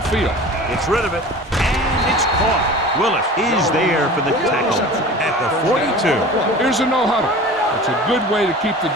field. Gets rid of it, and it's caught. Willis is there for the tackle at the 42. Here's a no-huddle. It's a good way to keep the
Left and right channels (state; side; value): normal; both; correlation 0.38